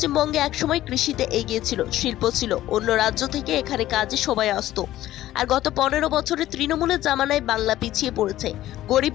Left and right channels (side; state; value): right; quieter; 14.3 dB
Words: একসময় কৃষিতে এগিয়ে ছিল, শিল্প ছিল, অন্য রাজ্য থেকে এখানে কাজে সবাই আসতো। আর গত 15 বছরে তৃণমূলের জামানায় বাংলা পিছিয়ে পড়েছে,